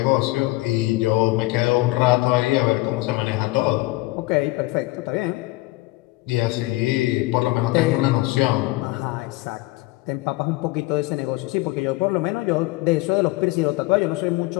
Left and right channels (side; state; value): right; quieter; 20.3 dB